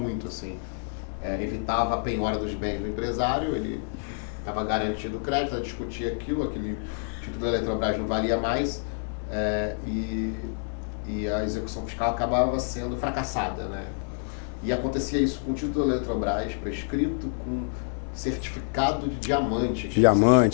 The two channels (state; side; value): silent; right; digital silence